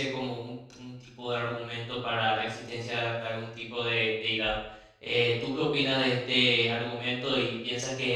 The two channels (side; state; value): both; identical; correlation 1.00